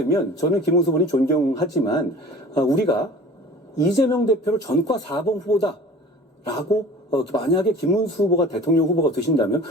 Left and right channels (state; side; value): normal; both; correlation 0.43